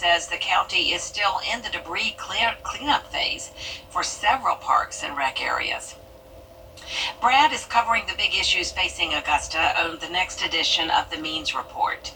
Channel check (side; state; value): both; identical; correlation 1.00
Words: the county is still in the debris cleanup phase for several parks and rec areas. Brad is covering the big issues facing Augusta on the next edition of the Means Report.